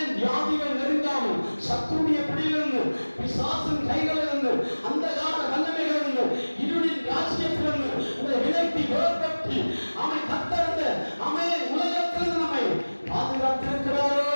வியாதிகள் நெருங்காமல், சத்துடைய பிடியிலிருந்து, பிசாசின் கைகளிலிருந்து, அந்தகார வல்லமைகளிலிருந்து, இருளின் ராஜ்யத்திலிருந்து உங்களை விலக்கி வேறுபட்டு கர்த்தர் உலகத்திலிருந்து நம்மை பாதுகாத்திருக்கிறாரோ,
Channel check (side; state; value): both; inverted; correlation -1.00